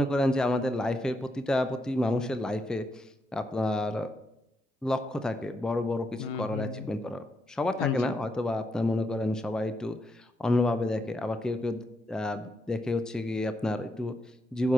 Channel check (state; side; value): normal; both; correlation 0.81